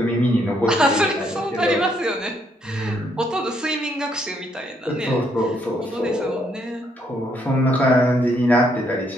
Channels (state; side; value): normal; both; correlation 0.72